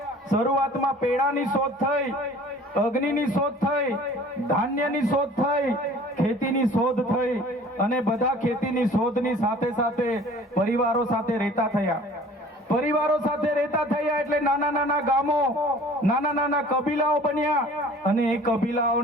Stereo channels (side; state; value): both; normal; correlation 0.48